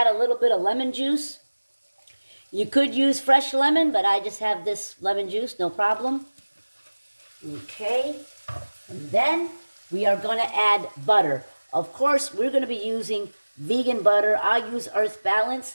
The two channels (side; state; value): both; inverted; correlation -1.00